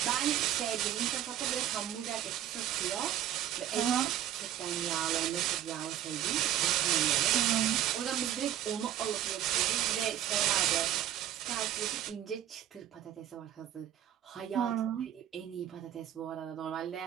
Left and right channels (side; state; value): left; quieter; 11.4 dB